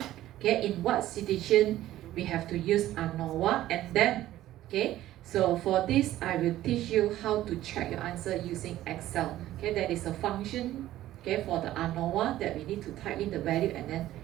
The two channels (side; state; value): left; quieter; 14.2 dB